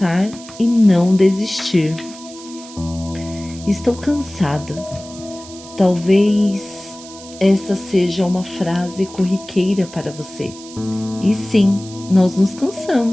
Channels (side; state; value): right; noise; hiss, 17 dB below the sound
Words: e não desistir. Estou cansada. Talvez esta seja uma frase corriqueira para você. E sim, nós nos